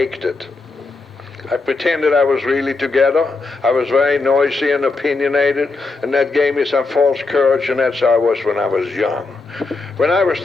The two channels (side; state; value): right; quieter; 3.7 dB